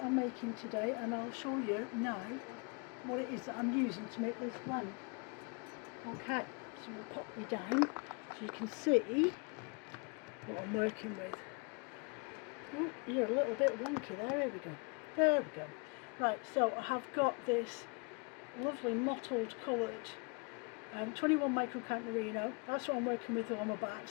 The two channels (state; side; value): quieter; right; 33.0 dB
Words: I'm making today, and I'll show you now what it is that I'm using to make this blend. Okay, so we'll pop me down so you can see what I'm working with. Oh, you're a little bit wonky there. Here we go. There we go. Right, so I have got this lovely mottled coloured 21 microcount merino. That's what I'm working with on my